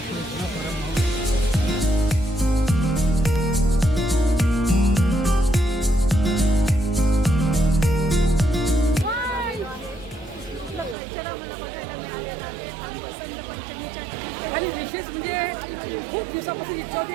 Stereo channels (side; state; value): left; drops out; at 11.0 s